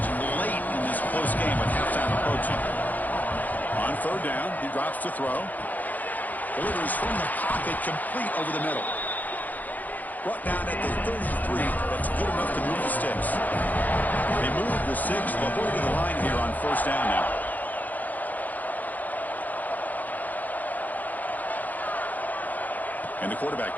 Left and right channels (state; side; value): late; right; 0.081 ms